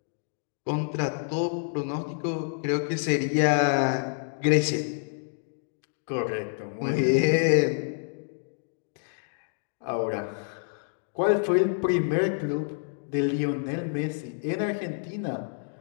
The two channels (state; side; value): silent; right; digital silence